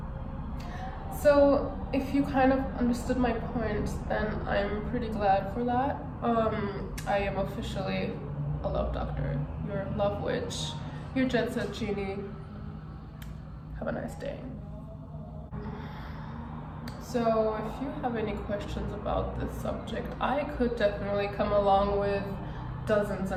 So if you kind of understood my point, then I'm pretty glad for that. I am officially a love doctor, your love witch, your jet set genie. Have a nice day. So if you have any questions about this subject, I could definitely come along with dozens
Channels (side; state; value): both; identical; correlation 1.00